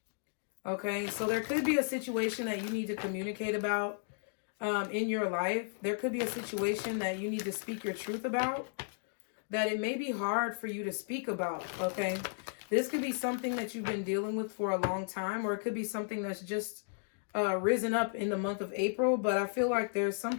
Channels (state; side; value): silent; right; digital silence